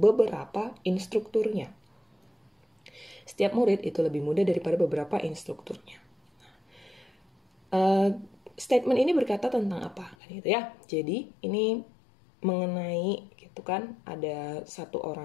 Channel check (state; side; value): drops out; right; at 10.2 s